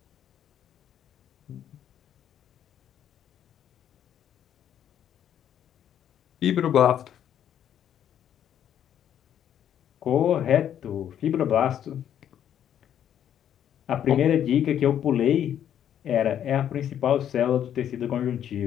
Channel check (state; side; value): quieter; right; 10.0 dB